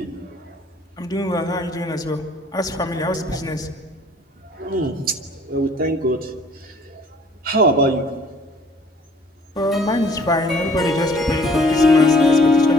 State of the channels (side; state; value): both; normal; correlation 0.56